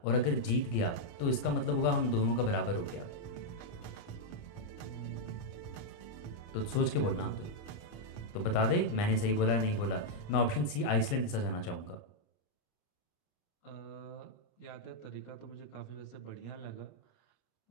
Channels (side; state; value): right; late; 29 ms